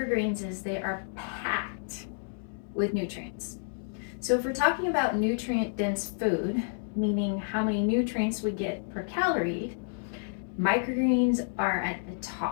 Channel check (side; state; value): right; silent; digital silence